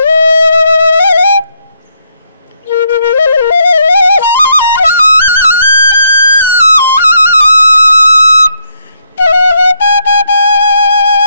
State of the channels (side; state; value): both; inverted; correlation -0.75